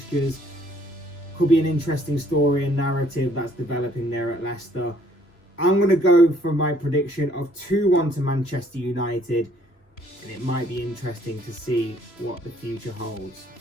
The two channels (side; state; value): right; late; 3.3 ms